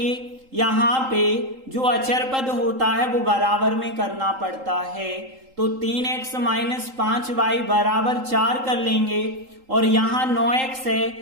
यहाँ पे जो अचर पद होता है वो बराबर में करना पड़ता है। तो 3x माइनस 5y बराबर 4 कर लेंगे और यहाँ 9x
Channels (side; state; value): left; late; 3.8 ms